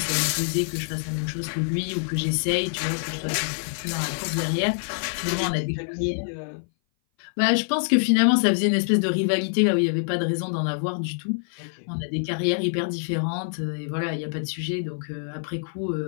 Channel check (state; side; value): silent; right; 58 dB below the other